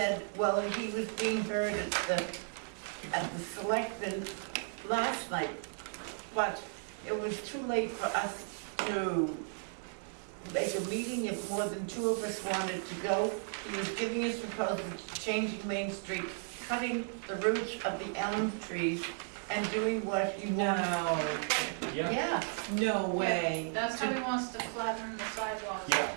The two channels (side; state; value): left; silent; 55 dB below the other